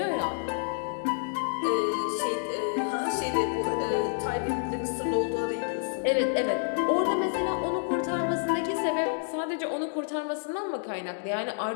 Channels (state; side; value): silent; right; digital silence